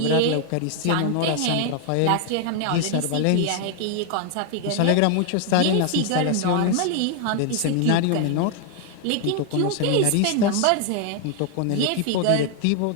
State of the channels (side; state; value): both; different; correlation 0.00